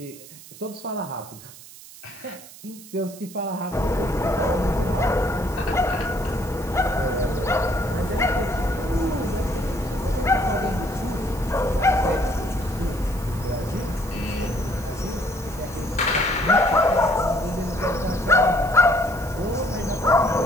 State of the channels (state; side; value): noise; right; hiss, 18 dB below the sound